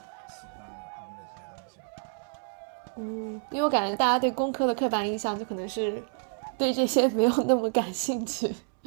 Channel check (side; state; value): left; silent; digital silence